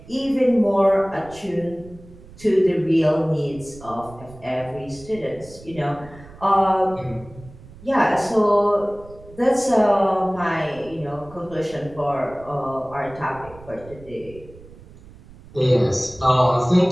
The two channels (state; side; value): noise; right; rumble, 20 dB below the sound